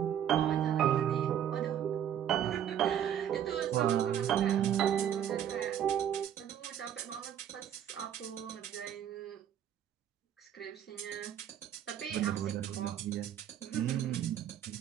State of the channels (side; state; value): left; quieter; 9.8 dB